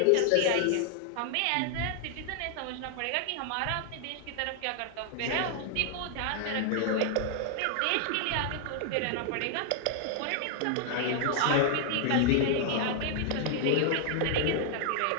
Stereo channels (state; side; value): different; both; correlation 0.00